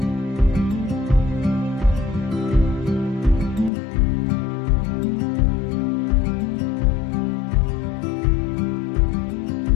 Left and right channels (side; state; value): right; drops out; at 3.7 s